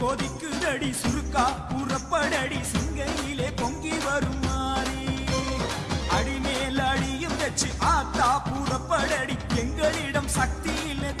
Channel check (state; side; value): identical; both; correlation 1.00